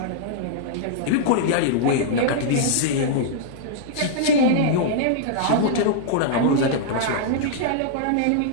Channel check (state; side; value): different; both; correlation -0.02